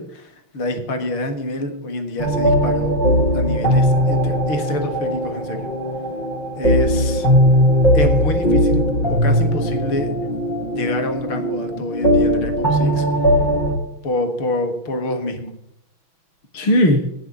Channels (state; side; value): late; right; 6.1 ms